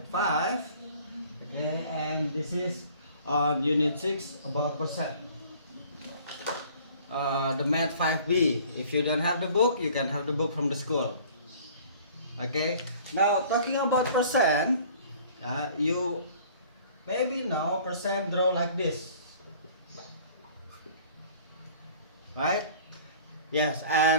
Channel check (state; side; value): inverted; both; correlation -0.51